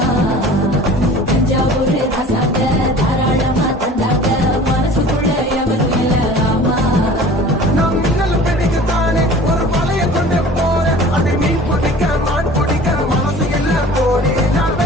தஞ்சாவூர் ராசாங்க தாராளமா தந்தாங்க மனசுக்குள்ள எவரும் இல்ல ஆமா நான் மின்னல் பிடிக்கத்தானே ஒரு வலைய கொண்டு போறேன் அதை மீன் பிடிக்க மான் பிடிக்க மனசு இல்ல போடி நான்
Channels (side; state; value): both; normal; correlation 0.44